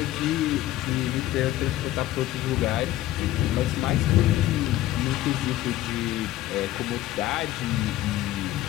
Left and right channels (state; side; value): quieter; right; 14.5 dB